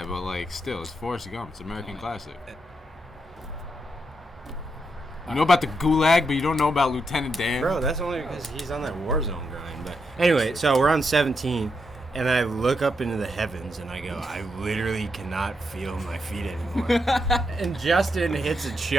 but like still, it's Forrest Gump. It's an American classic. You know about the Gulag, but you don't know about Lieutenant Dan. Bro, that's only because he's on that Warzone grind. But anyway, so we're on 17, and I look up into the heavens, and I go, I literally cannot feel my feet anymore. And Justin hits a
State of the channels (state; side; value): normal; both; correlation 0.81